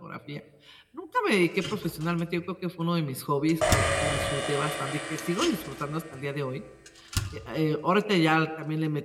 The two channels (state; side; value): identical; both; correlation 1.00